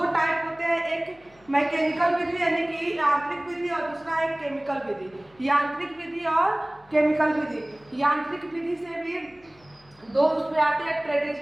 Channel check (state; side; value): noise; left; hum, 29 dB below the sound